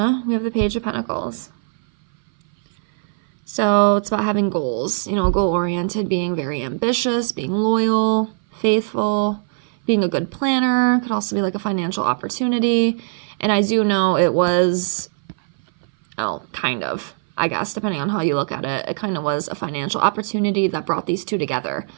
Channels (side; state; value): left; silent; 58 dB below the other